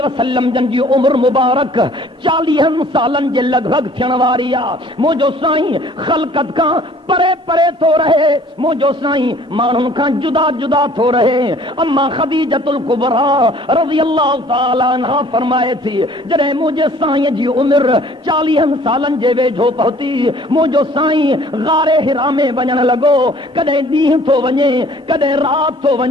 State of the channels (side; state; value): both; normal; correlation 0.54